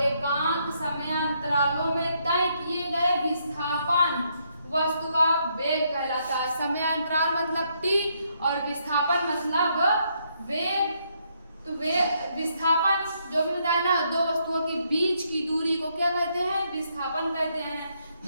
एकांक समयांतरालों में तय किए गए विस्थापन वस्तु का वेग कहलाता है। समयांतराल मतलब टी और विस्थापन मतलब वेग। तो विस्थापन जो भी बताया ना, दो वस्तुओं के बीच की दूरी को क्या कहते हैं? विस्थापन कहते हैं। तो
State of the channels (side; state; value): both; inverted; correlation -0.74